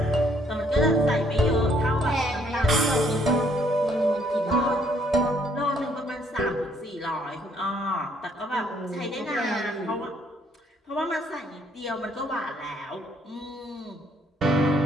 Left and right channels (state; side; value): normal; both; correlation 0.67